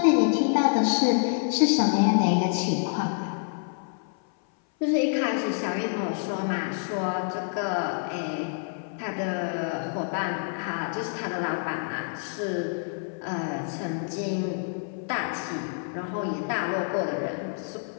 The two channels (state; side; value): silent; right; 58 dB below the other